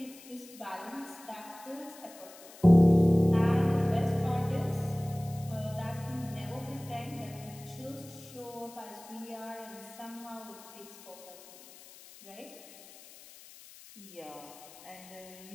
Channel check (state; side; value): noise; left; hiss, 20 dB below the sound